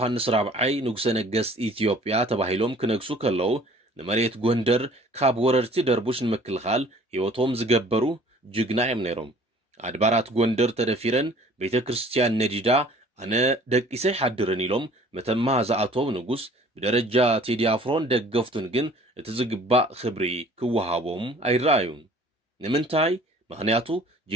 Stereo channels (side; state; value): both; normal; correlation 0.51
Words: ራብዓይ ንጉሰ ነገስት ኢትዮጵያ ተባሂሎም ክነግሱ ከለዉ ንመሬት ጎንደር ካብ ወረርቲ ደርቡሽ ንምክልኻል ሕይወቶም ዝገበሩ ጅግና እዮም ነይሮም። ኣድባራት ጎንደር ተደፊረን ቤተ ክርስቲያን ነዲዳ ኣነ ደቂሰይ ሓድርን ኢሎም መተማ ዝኣተው ንጉስ ብደረጃ ቴዲ ኣፍሮን ደገፍቱን ግን እቲ ዝግባእ ክብሪ ክወሃቦም ኣይረኣዩን። ንምንታይ? ምክንያቱ